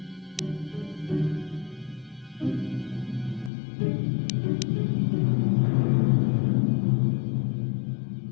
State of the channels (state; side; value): drops out; right; at 3.5 s